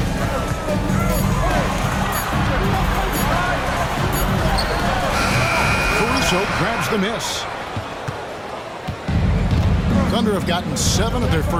Caruso grabs the miss. Thunder have gotten 7 of their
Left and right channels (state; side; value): identical; both; correlation 1.00